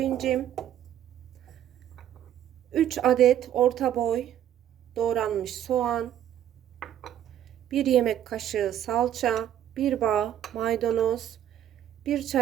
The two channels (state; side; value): quieter; left; 11.0 dB